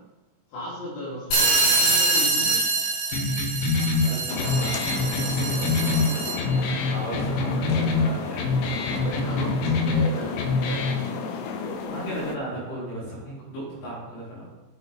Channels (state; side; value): late; right; 22 ms